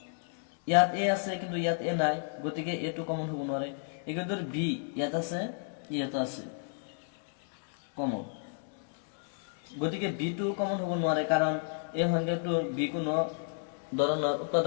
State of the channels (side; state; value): right; silent; digital silence